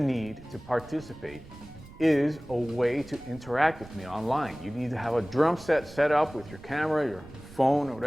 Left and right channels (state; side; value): noise; right; rumble, 19 dB below the sound